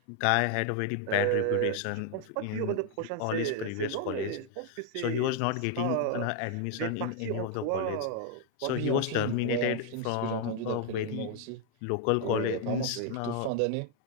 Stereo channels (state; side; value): different; both; correlation 0.01